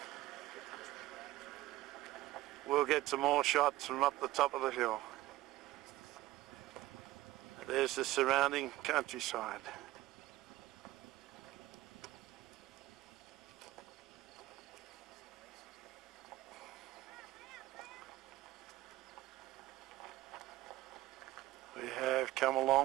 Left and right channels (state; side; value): quieter; left; 16.7 dB